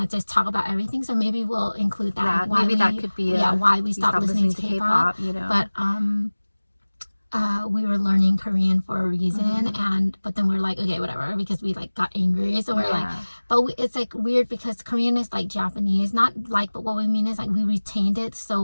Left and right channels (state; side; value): inverted; both; correlation -1.00